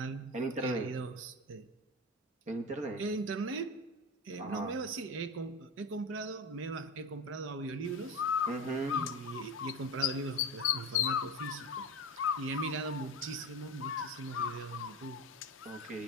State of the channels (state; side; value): normal; both; correlation 0.25